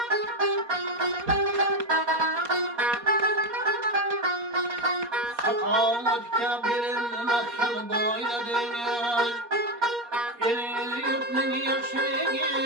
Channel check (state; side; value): late; left; 4.2 ms